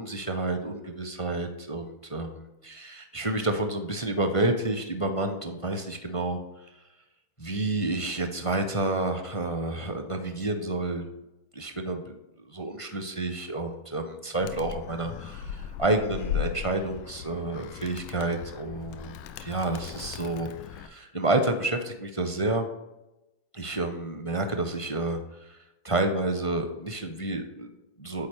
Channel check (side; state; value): right; late; 1.5 ms